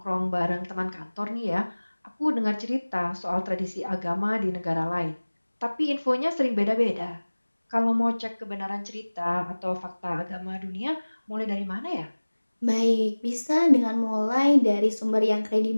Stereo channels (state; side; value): inverted; both; correlation -1.00